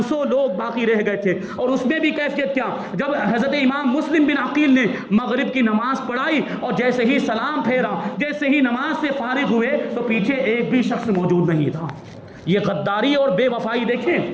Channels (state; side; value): identical; both; correlation 1.00